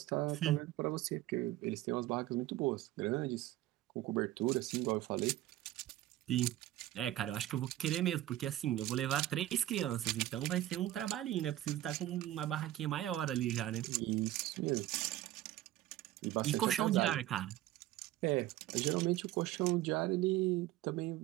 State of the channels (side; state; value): left; quieter; 14.6 dB